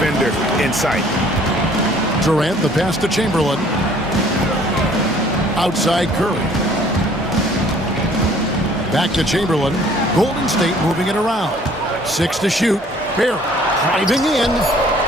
in sight. Durant, the pass to Chamberlain. Outside Curry. Back to Chamberlain. Golden State moving it around. 6 to shoot. Barry driving in.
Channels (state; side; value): normal; both; correlation 0.56